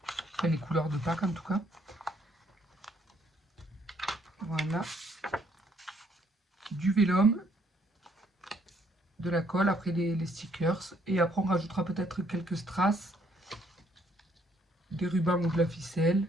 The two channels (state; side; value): normal; both; correlation 0.67